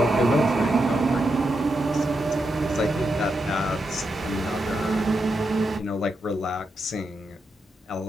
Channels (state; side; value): normal; both; correlation 0.85